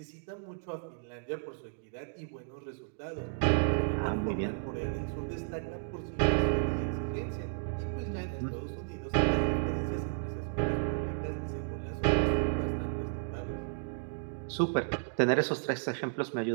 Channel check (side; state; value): left; silent; digital silence